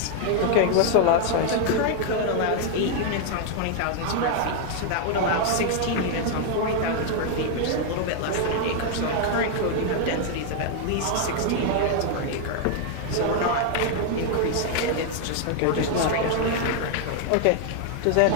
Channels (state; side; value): different; both; correlation 0.00